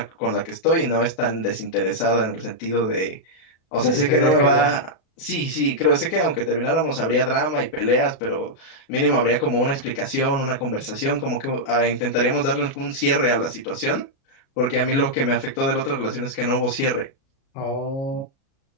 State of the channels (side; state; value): right; late; 36 ms